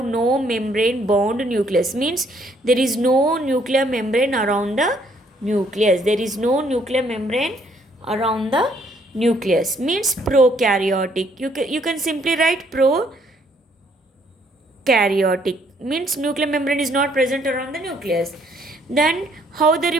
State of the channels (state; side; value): normal; both; correlation 0.66